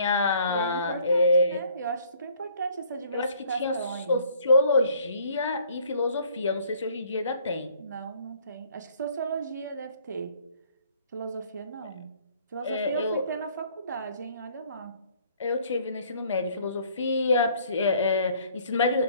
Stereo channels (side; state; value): both; inverted; correlation -0.59